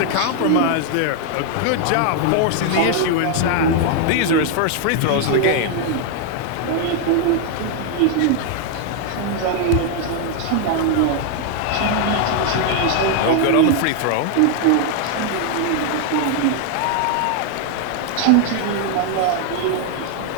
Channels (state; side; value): different; both; correlation 0.00